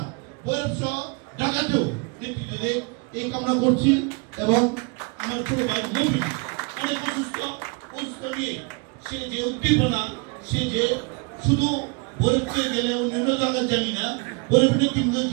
ভৈরব সহ ঢাকাতেও নেতৃত্বে এই কামনা করছি। এবং আমার ছোট ভাই নবীন অনেক অসুস্থ নিয়ে সে যে উদ্দীপনা, সে যে শুধু ভৈরবকে গেলে অন্যান্য জায়গায় জানি না ভৈরবের নেতৃত্ব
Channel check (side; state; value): left; quieter; 31.6 dB